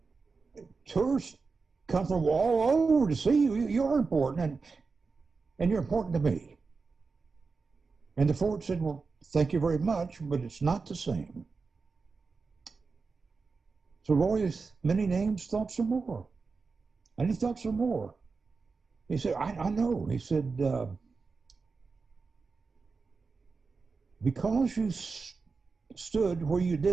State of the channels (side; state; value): left; quieter; 4.6 dB